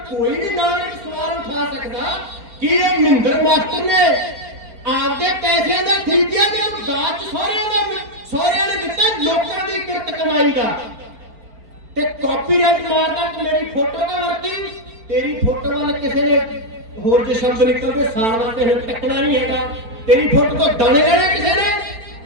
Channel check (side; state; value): left; late; 4.4 ms